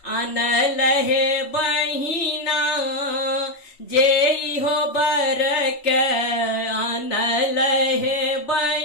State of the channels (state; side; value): late; right; 3.1 ms